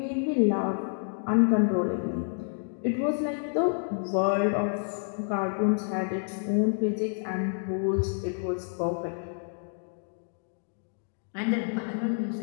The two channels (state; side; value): silent; right; digital silence